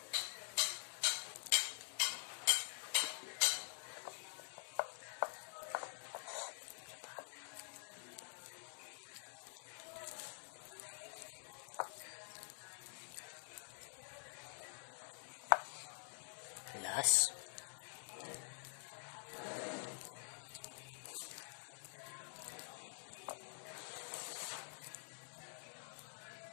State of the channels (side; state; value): right; silent; digital silence